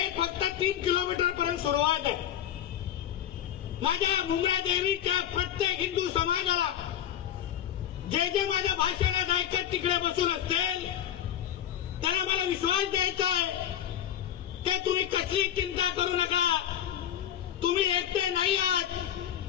फक्त 3 किलोमीटर पर्यंत सुरुवात आहे. माझ्या मुंब्रा देवीच्या प्रत्येक हिंदू समाजाला जे जे माझ्या भाषणात ऐकत तिकडे बसून असतील त्यांना मला विश्वास द्यायचा आहे ते तुम्ही कसली चिंता करू नका. तुम्ही एकटे नाही आहात.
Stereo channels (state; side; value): quieter; right; 10.7 dB